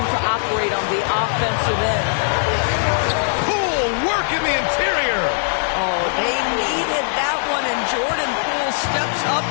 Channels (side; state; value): right; silent; digital silence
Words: operate on the offensive end. Poole work in the interior. Oh, they needed that one, and Jordan Poole steps up